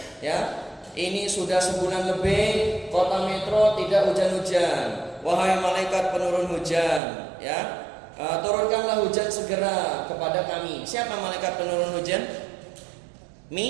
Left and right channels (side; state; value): left; drops out; at 7.0 s